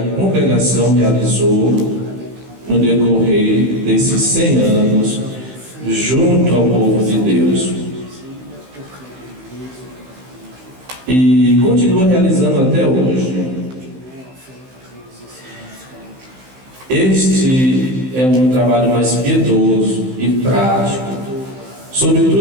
congregação realizou no decorrer desses 100 anos junto ao povo de Deus. E continua realizando até hoje. Este é um trabalho mais piedoso e prático,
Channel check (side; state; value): left; late; 15 ms